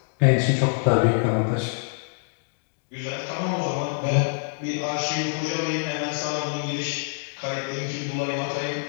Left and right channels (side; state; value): right; silent; digital silence